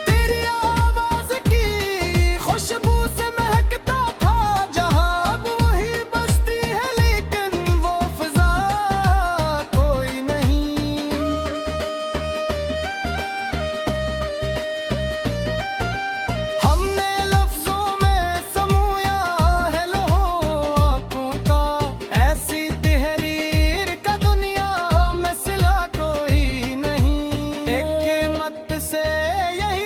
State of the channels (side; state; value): both; identical; correlation 1.00